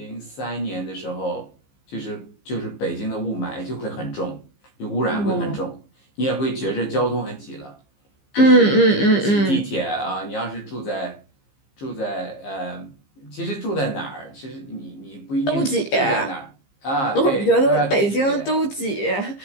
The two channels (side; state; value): right; late; 15 ms